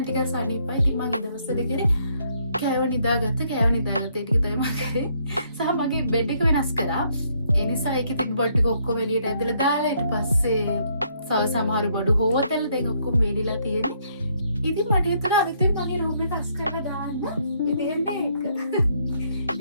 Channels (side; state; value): both; inverted; correlation -0.70